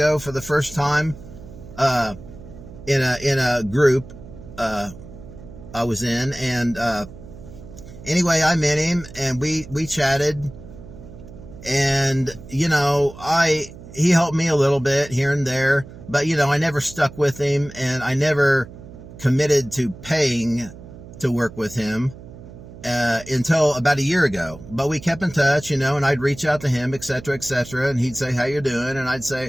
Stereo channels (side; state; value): right; noise; hum, 16 dB below the sound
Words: for the first time, in a group, I was in, and, anyway, I met him, and we chatted, and, he helped me a little bit here and there, but, I never stuck with him, and I never committed to paying to work with him, until about a year ago. But we kept in touch, and I'd reach out to him, etc., and he'd say, how you doing? And I'd